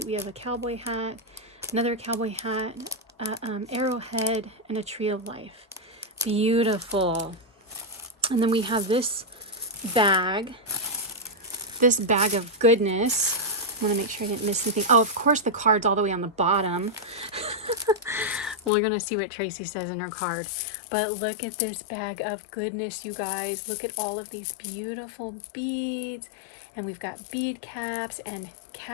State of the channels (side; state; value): right; drops out; at 18.7 s